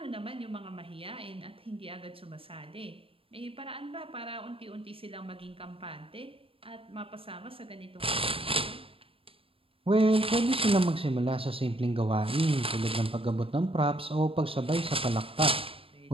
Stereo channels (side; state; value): left; late; 0.27 ms